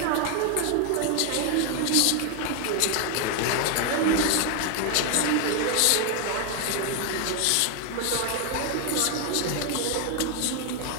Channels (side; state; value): both; different; correlation 0.01